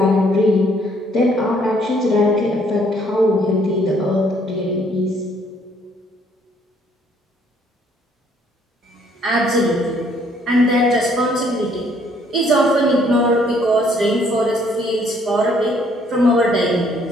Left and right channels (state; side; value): normal; both; correlation 0.64